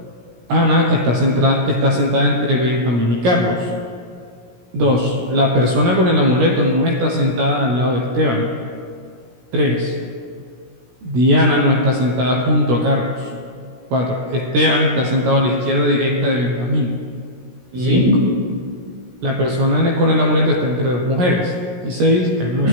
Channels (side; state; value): left; late; 17 ms